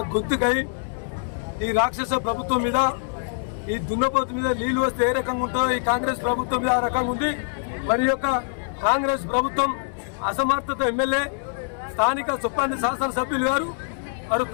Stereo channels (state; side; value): silent; right; digital silence